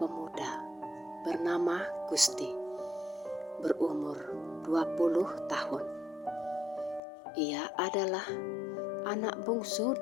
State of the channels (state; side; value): drops out; right; at 7.0 s